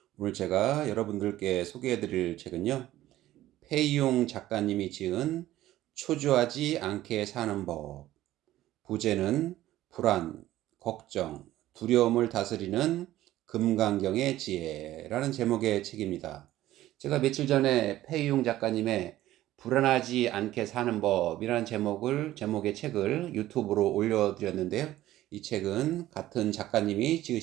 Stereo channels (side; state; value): left; quieter; 14.7 dB